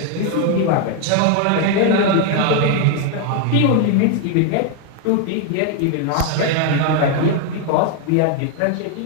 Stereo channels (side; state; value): both; different; correlation 0.01